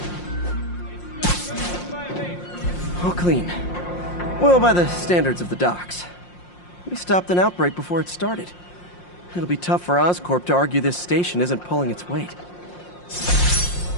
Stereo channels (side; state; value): right; late; 5.6 ms